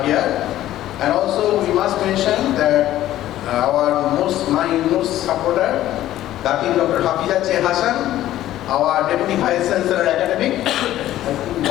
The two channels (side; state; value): right; quieter; 13.6 dB